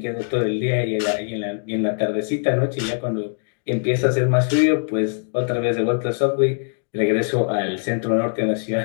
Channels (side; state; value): right; silent; digital silence